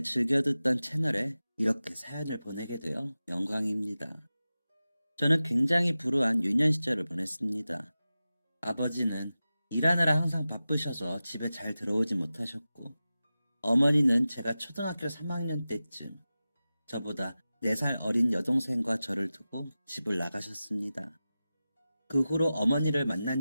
즐겨 듣던 채널에 이렇게 사연을 보내게 되어 영광입니다. 저는 굉장히 불우한 유년 시절을 보냈습니다. 아버지는 일하느라 항상 바쁘셔서 집에 잘 들어오지 못하셨고, 어머니는 제가 초등학교 3학년 때쯤 저보다 4살 어린 여동생과 저를 두고 집을 나가셨습니다. 그 후로 어머니를 만난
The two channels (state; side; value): inverted; both; correlation -0.95